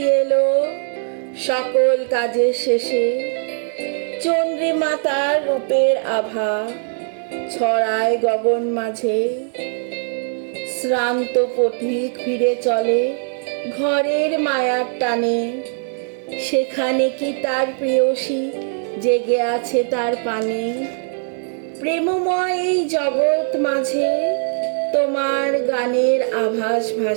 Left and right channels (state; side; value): silent; left; 56 dB below the other